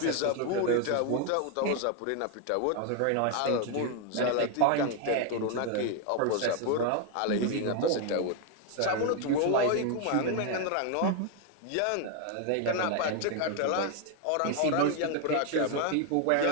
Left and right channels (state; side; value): different; both; correlation 0.01